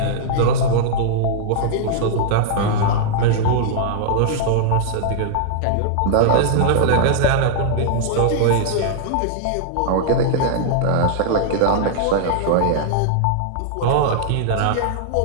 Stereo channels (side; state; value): both; different; correlation -0.01